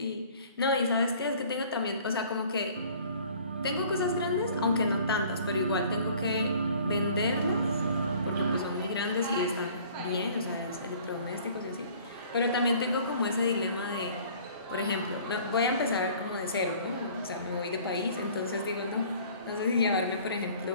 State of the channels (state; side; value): inverted; both; correlation -0.52